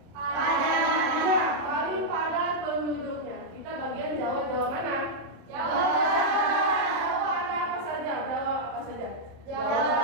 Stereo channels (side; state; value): left; late; 27 ms